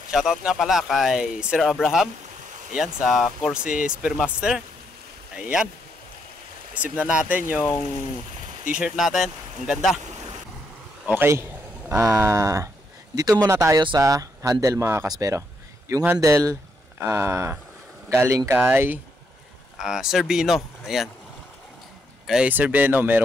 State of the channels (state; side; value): normal; both; correlation 0.77